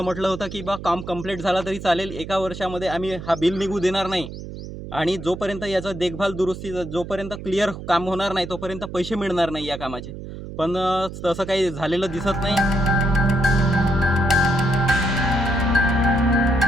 म्हटलं होतं की बा काम कंप्लीट झाला तरी चालेल, 1 वर्षामध्ये आम्ही हा बिल निघू देणार नाही आणि जोपर्यंत याचं देखभाल दुरुस्ती जोपर्यंत क्लिअर काम होणार नाही तोपर्यंत पैसे मिळणार नाही या कामाचे. पण तसं काही झालेलं दिसत नाही.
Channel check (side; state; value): right; noise; hum, 11 dB below the sound